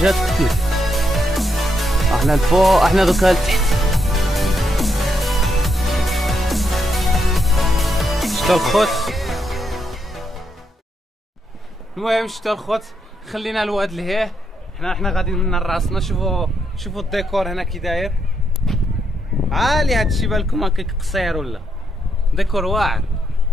كتير. احنا الفوق، احنا دوكا لتحت. شتا الخوت. المهم شتا الخوت، خلينا الواد لهيه. حنا غاديين من راسنا. شوفوا الديكور هنا كي داير عالي. هادشي بالكم هكاك قصير ولا ديكور واعر.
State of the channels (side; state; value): both; normal; correlation 0.79